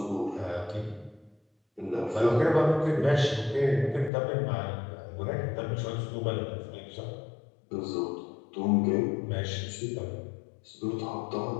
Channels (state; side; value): drops out; right; at 4.1 s